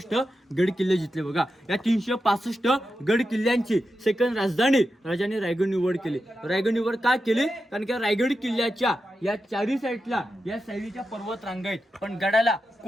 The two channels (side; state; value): both; normal; correlation 0.89